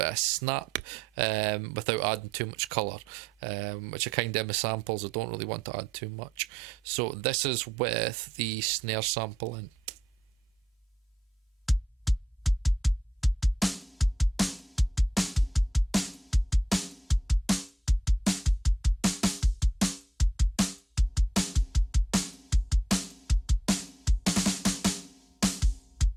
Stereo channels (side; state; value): both; normal; correlation 0.80